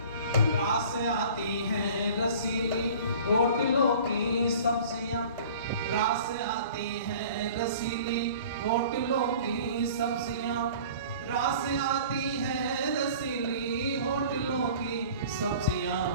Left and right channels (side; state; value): both; inverted; correlation -0.45